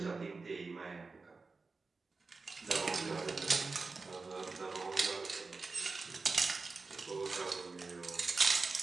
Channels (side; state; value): left; quieter; 4.1 dB